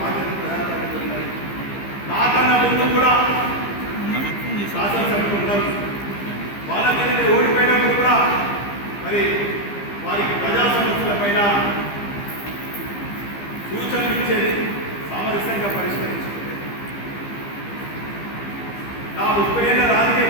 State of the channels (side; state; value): right; late; 15 ms